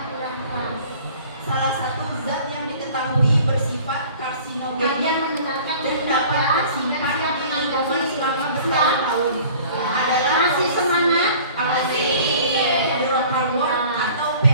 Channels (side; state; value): both; inverted; correlation -0.48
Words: kurang keras. Salah satu zat yang diketahui bersifat karsinogenik Kalian mendengarkan dan dapat tersimpan di lingkungan selama bertahun-tahun adalah Masih semangat? hidrokarbon atau